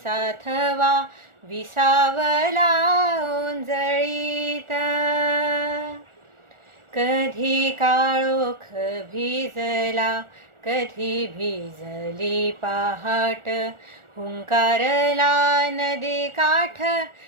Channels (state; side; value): late; left; 1.4 ms